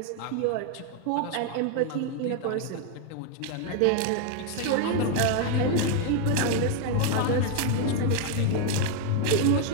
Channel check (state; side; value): different; both; correlation 0.00